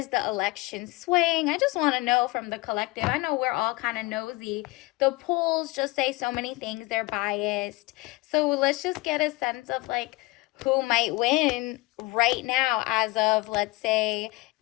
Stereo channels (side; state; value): right; quieter; 22.7 dB